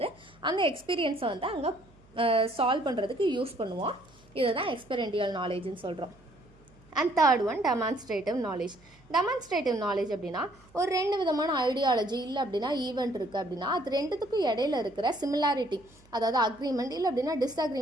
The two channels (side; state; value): right; noise; hum, 28 dB below the sound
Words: அந்த எக்ஸ்பீரியன்ஸை வந்து அங்கே சால்வ் பண்ணுறதுக்கு யூஸ் பண்ணுவோம். இதை தான் எக்ஸ்பெரிமெண்டல் நாலேஜ்னு சொல்கிறோம். And third one demonstrative knowledge. Demonstrative knowledge அப்படின்னா ஒரு 2 விதமான ஐடியாலஜி இல்லை அப்படின்னா ஈவெண்ட் இருக்குது அப்படின்னா அது ரெண்டுத்துக்கும் இடையில இருக்கிற சிமிலாரிட்டி, அதாவது அக்ரிமெண்ட் இல்லை அப்படின்னா